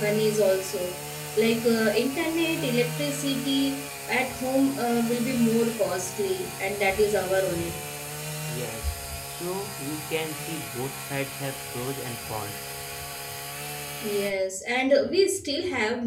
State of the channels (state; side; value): identical; both; correlation 1.00